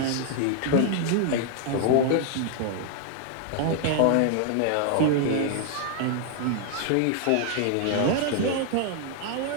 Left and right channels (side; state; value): both; different; correlation 0.00